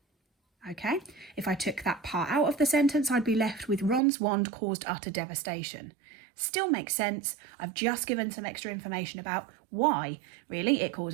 Okay, if I took that part out of the sentence, I'd be left with Ron's wand caused utter devastation. Still makes sense. I've just given some extra information about why, really, it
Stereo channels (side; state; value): left; drops out; at 4.0 s